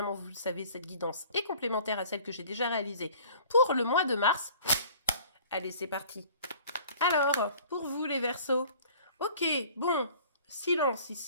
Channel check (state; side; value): inverted; both; correlation -0.49